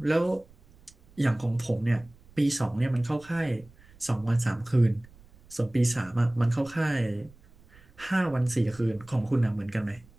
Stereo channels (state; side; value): noise; right; rumble, 26 dB below the sound